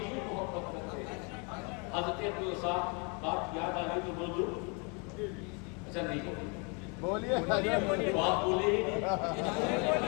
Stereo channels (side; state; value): right; quieter; 33.5 dB